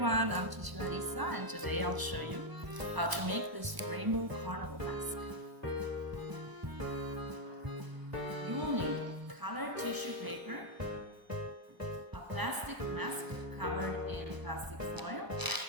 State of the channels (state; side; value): late; left; 1.0 ms